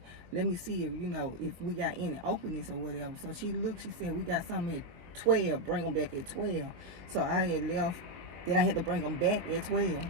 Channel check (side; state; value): left; late; 23 ms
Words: let me see if, if we got any openings or whatever. So she looked, she said, we got something at 12, bring them back at 12. So I had left, then I had to bring them back at 12.